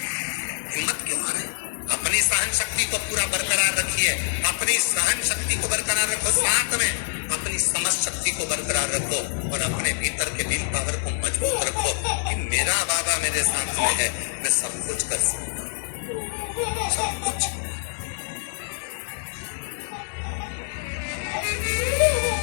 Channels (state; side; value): silent; right; digital silence